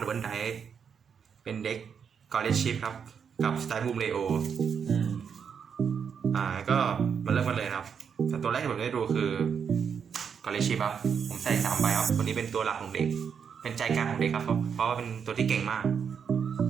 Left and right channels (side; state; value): left; quieter; 7.0 dB